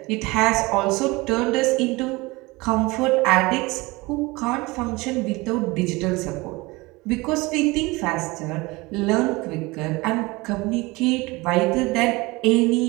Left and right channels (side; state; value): left; quieter; 23.0 dB